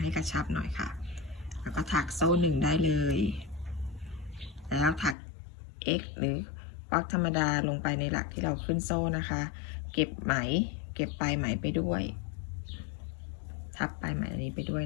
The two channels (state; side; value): drops out; right; at 5.2 s